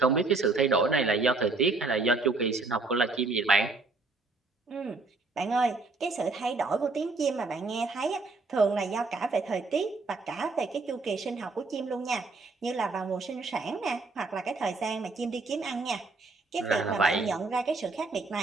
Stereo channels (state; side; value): quieter; left; 3.7 dB